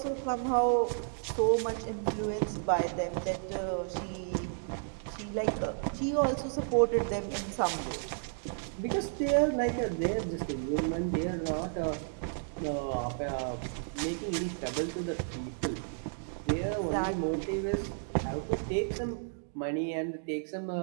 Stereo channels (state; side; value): silent; left; digital silence